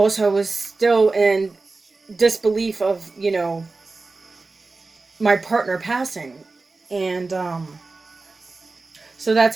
I was still in disbelief of my partner passing. And so that's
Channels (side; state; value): left; quieter; 3.7 dB